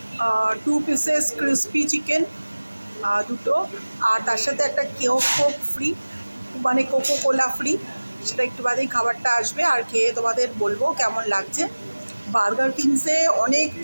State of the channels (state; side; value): inverted; both; correlation -1.00